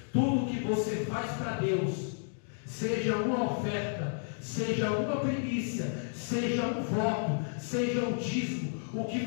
Tudo que você faz para Deus, seja uma oferta, seja uma primícia, seja um voto, seja um dízimo, o que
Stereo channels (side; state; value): right; silent; digital silence